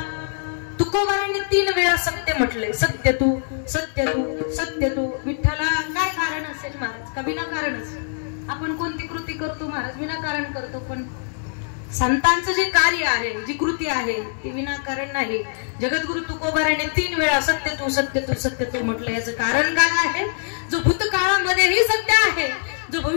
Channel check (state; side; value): silent; right; digital silence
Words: तुकोबारांनी 3 वेळा सत्य म्हटले. सत्य तू सत्य तू सत्य तू विठ्ठला. काय कारण असेल महाराज? का विनाकारणच? आपण कोणती कृती करतो महाराज? विनाकारण करतो. पण संतांचं जे कार्य आहे, जी कृती आहे ती विनाकारण नाही. जगद्गुरु तुकोबारांनी 3 वेळा सत्य तू सत्य तू सत्य तू म्हटलं. याचं कारण काय आहे? जो भूतकाळामध्येही सत्य आहे, जो